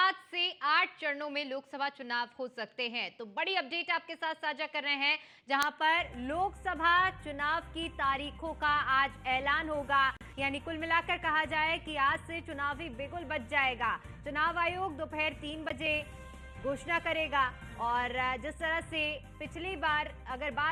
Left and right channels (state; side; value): identical; both; correlation 1.00